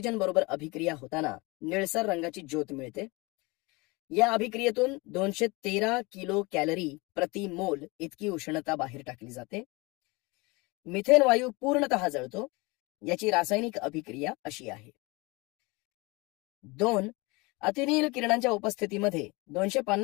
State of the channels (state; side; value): quieter; right; 25.3 dB